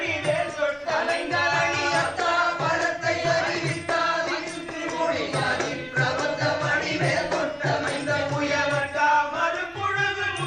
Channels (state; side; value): identical; both; correlation 1.00